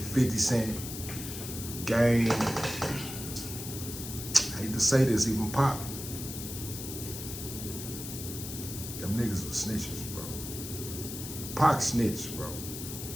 Cent, Game. I hate to say this, even Pop. Them niggas were snitches, bro. Pac snitched, bro.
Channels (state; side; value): noise; left; hiss, 8 dB below the sound